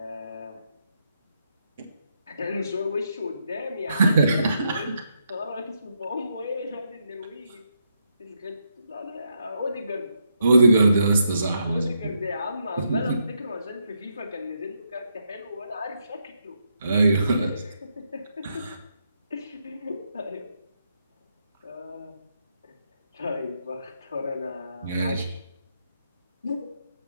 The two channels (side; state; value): both; inverted; correlation -0.79